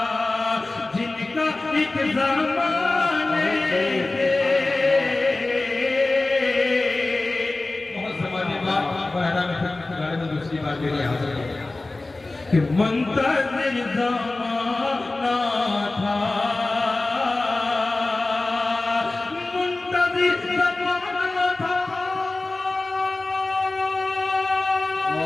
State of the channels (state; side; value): quieter; right; 3.1 dB